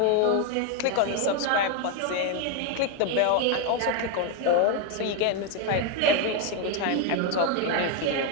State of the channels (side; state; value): both; different; correlation 0.01